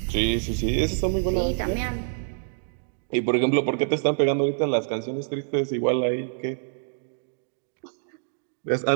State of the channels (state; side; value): silent; left; digital silence